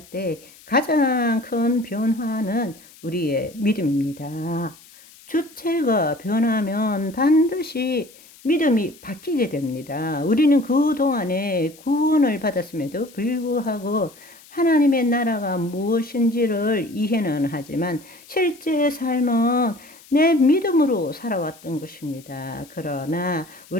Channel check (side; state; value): left; noise; hiss, 24 dB below the sound